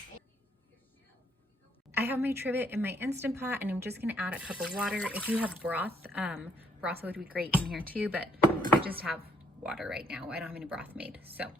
I have my trivet in my Instant Pot, and I'm just gonna add a cup of water. If you have broth, broth would be great in here too, but I just have water right now. I don't have any broth made. So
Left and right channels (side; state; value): both; normal; correlation 0.69